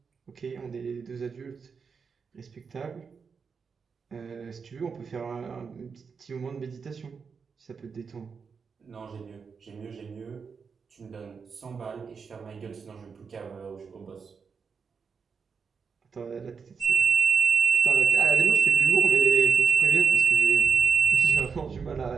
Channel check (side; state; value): left; quieter; 5.7 dB